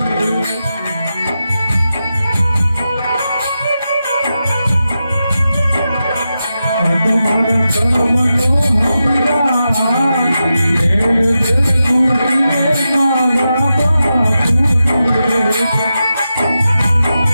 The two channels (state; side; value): inverted; both; correlation -0.90